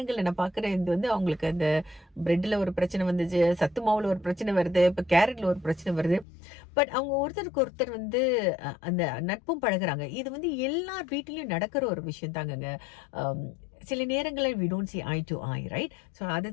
நான் பார்க்குறேன், இது வந்து அவங்களுக்கு அந்த பிரெட்டில் ஒரு பிரச்சனை வந்துச்சு, சத்து மாவில் ஒரு பிரச்சனை வருது, இப்போ கேரட்டில் ஒரு பிரச்சனை வருது. பட் அவங்க ஒருத்தருக்கு ஒருத்தர் வந்து அந்த நட்பும் பழகுறாங்க. இது வந்து எல்லார் வீட்டிலையும் நடக்கிற ஒரு விஷயம் தாங்கங்க. சில நேரங்களில் we don't see eye to eye, right? So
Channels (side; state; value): right; drops out; at 6.2 s